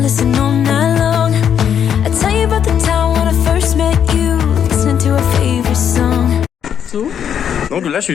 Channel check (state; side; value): quieter; right; 8.6 dB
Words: listen all night long. I tell you about je